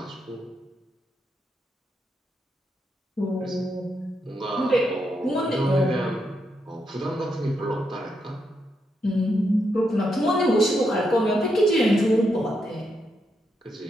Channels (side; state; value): both; normal; correlation 0.81